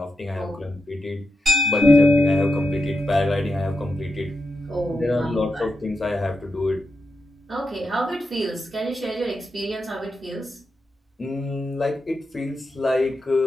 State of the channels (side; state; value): both; normal; correlation 0.87